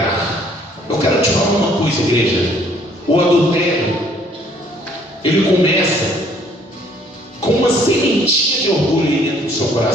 Eu quero te falar uma coisa, igreja. O adultério, ele começa com uma sementinha de orgulho aí dentro do seu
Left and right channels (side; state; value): both; normal; correlation 0.61